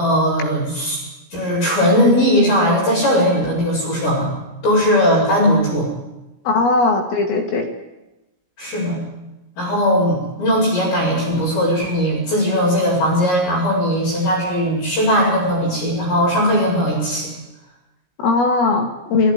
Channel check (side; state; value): right; late; 17 ms